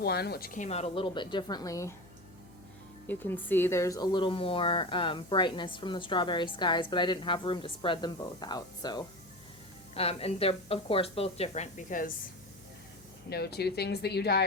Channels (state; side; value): noise; left; hum, 25 dB below the sound